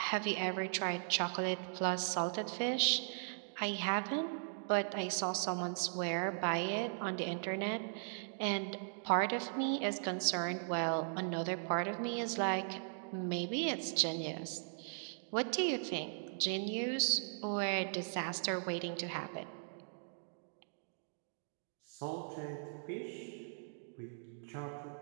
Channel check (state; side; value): silent; left; digital silence